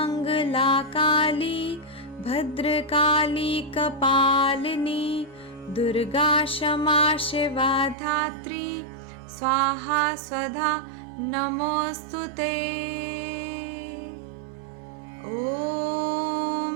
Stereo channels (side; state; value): left; drops out; at 8.0 s